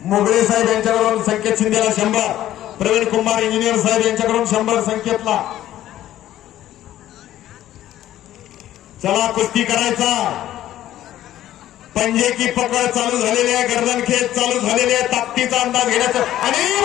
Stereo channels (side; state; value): right; quieter; 13.1 dB